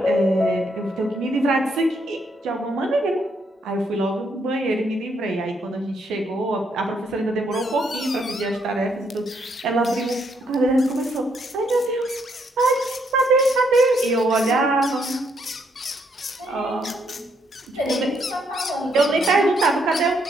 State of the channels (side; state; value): both; normal; correlation 0.73